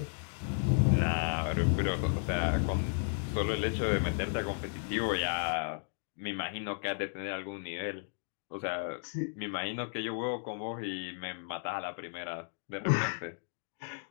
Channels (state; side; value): silent; right; digital silence